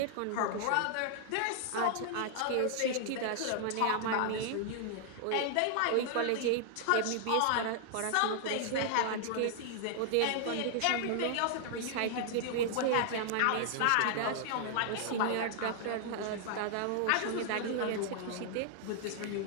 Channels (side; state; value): both; different; correlation -0.01